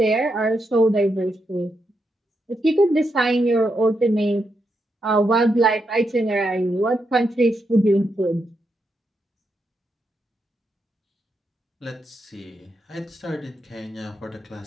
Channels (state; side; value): normal; both; correlation 0.83